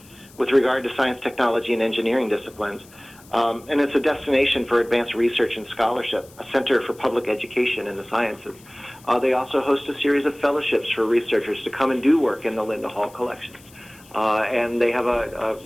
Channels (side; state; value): left; noise; hiss, 25 dB below the sound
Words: with regard to science, technology, and engineering disciplines. And it's a destination for advanced research and scholarship, a center for public education in the sciences. They also host a series of fellowships for researchers to come and do work in the Linda Hall collections. And they have a